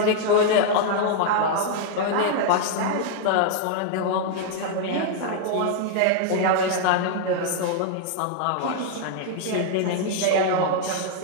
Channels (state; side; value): different; both; correlation 0.00